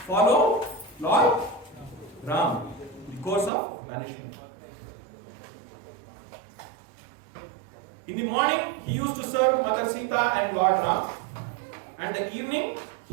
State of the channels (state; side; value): drops out; left; at 3.5 s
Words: follow Lord Ram, the course of banishment. In the morning, he used to serve Mother Sita and Lord Ram, and the evening,